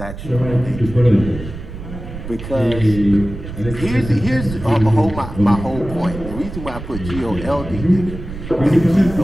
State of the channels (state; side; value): noise; right; rumble, 10 dB below the sound